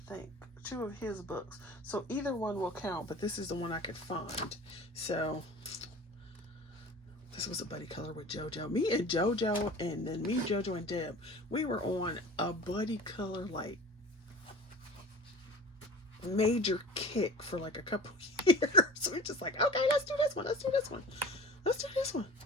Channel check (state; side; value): normal; both; correlation 0.39